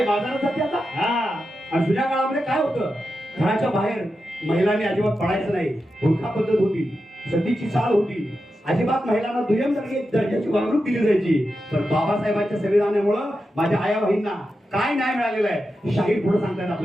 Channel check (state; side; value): normal; both; correlation 0.89